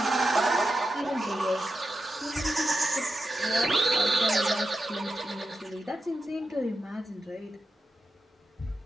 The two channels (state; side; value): normal; both; correlation 0.88